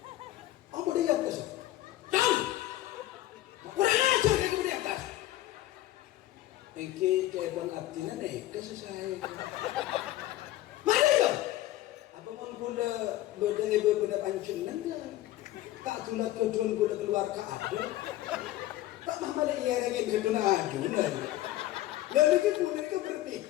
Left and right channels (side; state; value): right; quieter; 15.2 dB